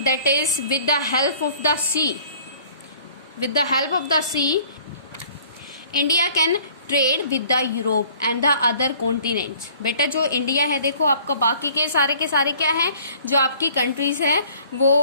that is with the help of the sea, with the help of the sea India can trade with the Europe and the other continents. बेटा जो India है देखो आपका बाकी के सारे क्या है, जो आपकी कंट्रीज है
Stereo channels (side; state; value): both; inverted; correlation -0.54